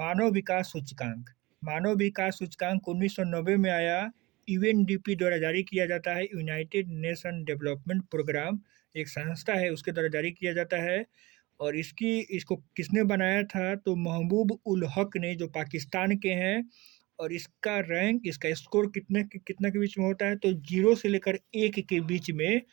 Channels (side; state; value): left; quieter; 21.9 dB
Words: विकास सूचकांक। मानव विकास सूचकांक 1990 में आया। यूएनडीपी द्वारा जारी किया जाता है। यूनाइटेड नेशन डेवलपमेंट प्रोग्राम एक संस्था है, उसके द्वारा जारी किया जाता है। और इसको किसने बनाया था? तो महबूब उल हक ने, जो पाकिस्तान के हैं। और इसका रैंक, इसका स्कोर कितना के बीच में होता है? तो 0 से लेकर 1 के बीच में